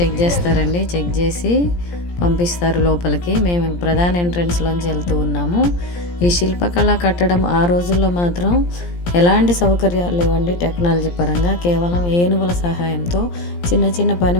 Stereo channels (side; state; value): right; late; 17 ms